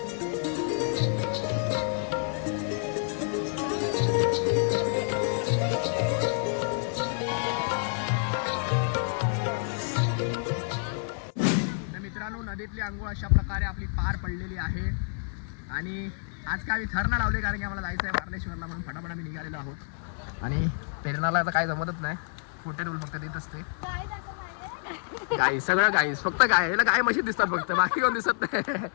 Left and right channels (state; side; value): silent; right; 59 dB below the other